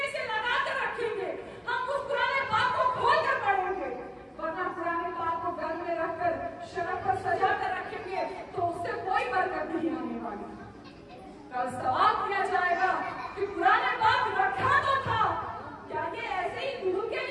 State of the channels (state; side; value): identical; both; correlation 1.00